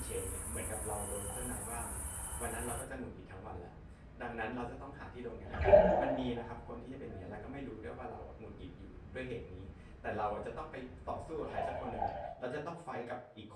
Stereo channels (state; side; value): identical; both; correlation 1.00